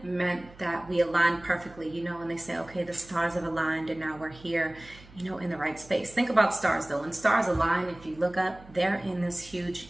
meant that we aligned perfectly, and they say, okay, the stars have aligned and now we're here, in the right space. Think about stars though. When stars align, if you look up, they're in this huge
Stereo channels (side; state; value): right; noise; hum, 22 dB below the sound